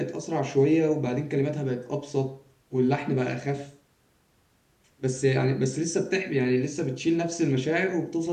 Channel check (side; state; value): both; identical; correlation 1.00